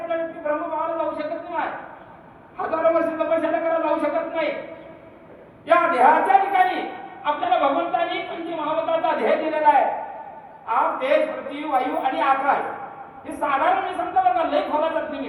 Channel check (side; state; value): both; identical; correlation 1.00